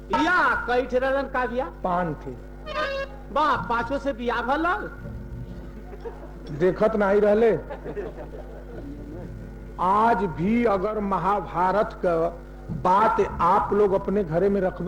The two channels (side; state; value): both; identical; correlation 1.00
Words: या कई ठेरन का बिया 5 थे। वाह, 5 से बिया भल देखत नहीं रहले। आज भी अगर महाभारत का बात आप लोग अपने घरे में